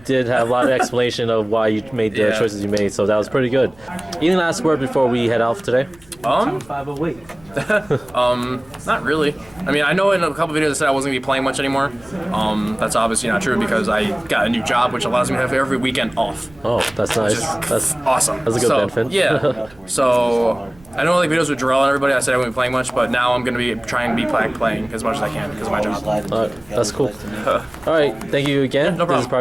have a lot of explanation of why you made the choices you made, so that was pretty good. Any last word before we head off today? Not really. I mean, I know in a couple videos I said I wasn't going to be playing much anymore. That's obviously not true because I got a new job, which allows me to have every weekend off. Oh, that's nice. That's awesome. That's a good benefit. Yeah. So, I know like videos with Jarrell and everybody, I said I wouldn't be playing much, but now I'm going to be trying to be playing as much as I can because of my job. Alright, that's cool. Alright, thank you again. No problem. This is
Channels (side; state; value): right; noise; rumble, 26 dB below the sound